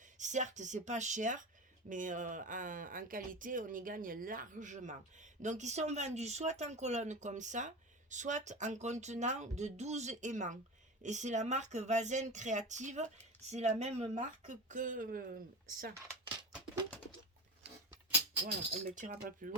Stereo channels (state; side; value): normal; both; correlation 0.27